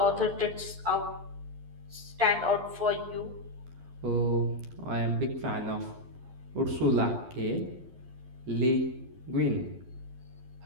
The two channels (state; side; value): late; left; 11 ms